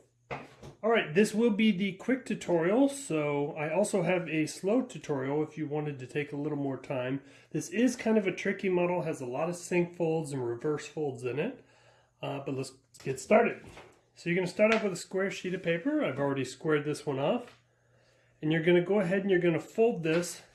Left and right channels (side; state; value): both; identical; correlation 1.00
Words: Alright, this will be the quick tutorial, so I also have a slow tutorial if you wanted to take a little more time. This is kind of a tricky model, has a lot of sync folds and reverse folds in it, but let's get started. So you're going to start off with a square sheet of paper. I've already squared this one off. And you're going to go ahead and you're going to fold this